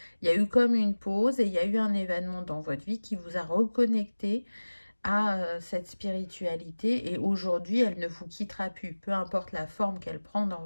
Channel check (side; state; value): both; inverted; correlation -1.00